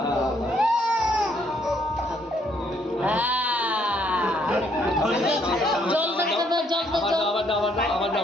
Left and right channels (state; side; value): normal; both; correlation 0.69